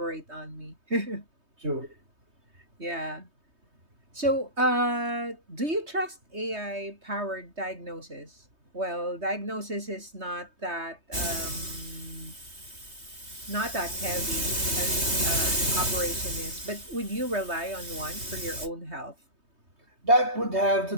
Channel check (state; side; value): late; left; 3.2 ms